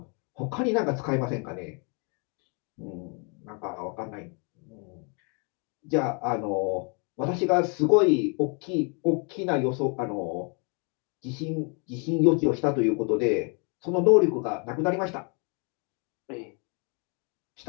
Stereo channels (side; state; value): right; quieter; 36.3 dB